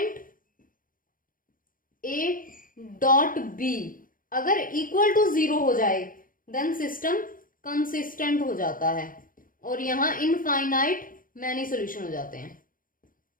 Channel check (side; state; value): right; late; 0.40 ms